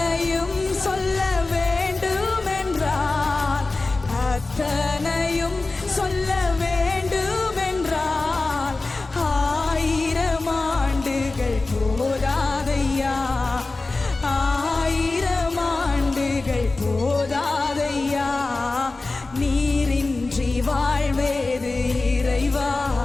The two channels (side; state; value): right; quieter; 3.4 dB